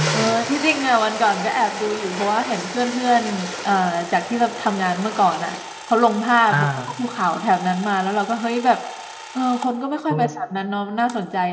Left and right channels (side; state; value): both; identical; correlation 1.00